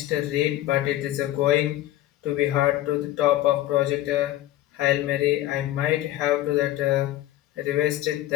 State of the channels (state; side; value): quieter; right; 14.7 dB